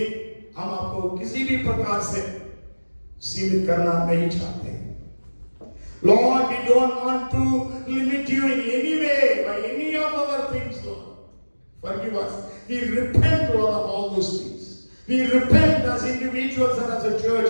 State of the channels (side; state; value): both; inverted; correlation -1.00